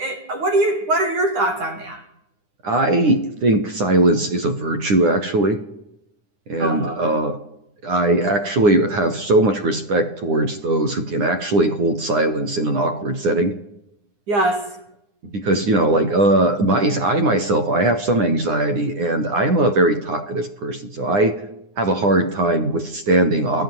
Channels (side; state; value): left; late; 9.8 ms